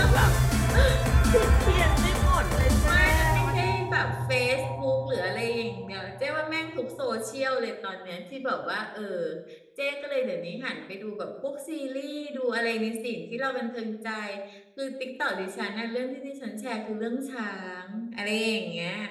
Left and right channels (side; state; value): both; identical; correlation 1.00